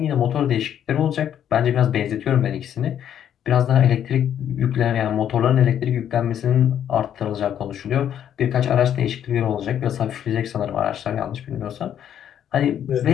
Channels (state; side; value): quieter; right; 9.8 dB